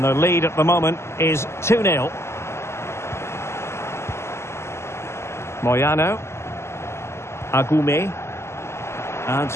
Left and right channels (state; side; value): late; right; 0.13 ms